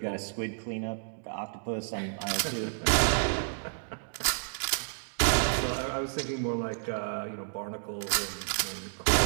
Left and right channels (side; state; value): left; silent; digital silence